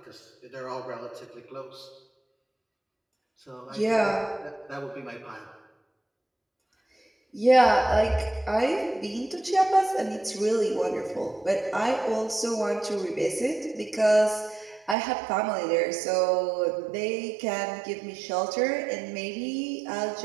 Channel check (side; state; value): left; drops out; at 15.0 s